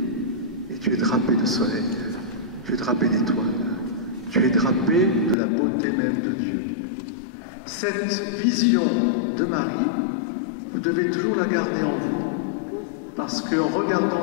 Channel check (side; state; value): right; drops out; at 5.4 s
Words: et tu es drapé de soleil, tu es drapé d'étoiles, tu es drapé de la beauté même de Dieu. Cette vision de Marie, vous devez toujours la garder en vous, parce qu'en regardant